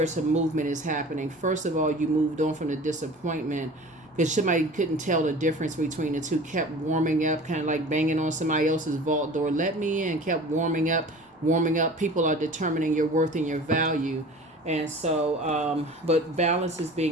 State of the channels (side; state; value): both; normal; correlation 0.41